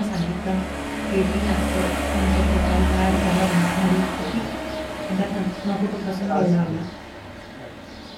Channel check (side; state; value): both; identical; correlation 1.00